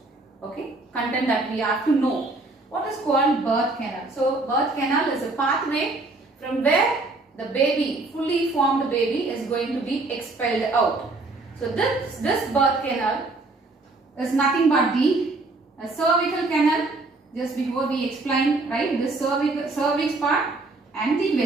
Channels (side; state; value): left; quieter; 3.2 dB